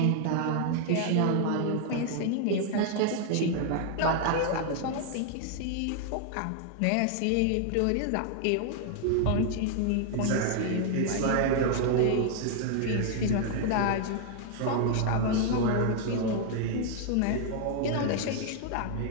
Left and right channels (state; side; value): different; both; correlation 0.00